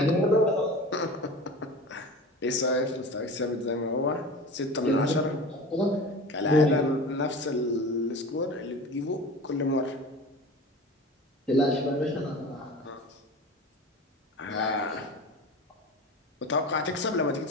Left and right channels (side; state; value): both; normal; correlation 0.34